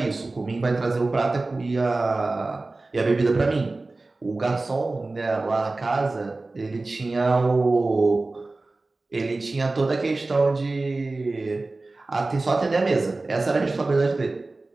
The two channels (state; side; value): quieter; left; 3.3 dB